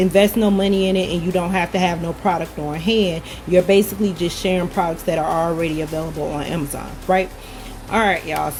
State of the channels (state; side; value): identical; both; correlation 1.00